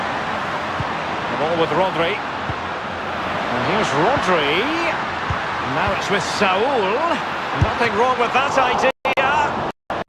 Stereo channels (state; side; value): identical; both; correlation 1.00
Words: ball with Rodri. And here's Rodri. And now it's with Saul. Nothing wrong with that idea.